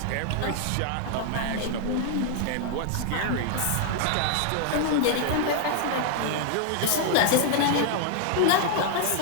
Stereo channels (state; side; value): different; both; correlation 0.00